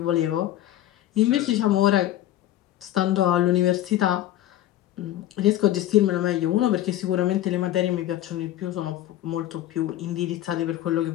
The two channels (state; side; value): quieter; right; 13.4 dB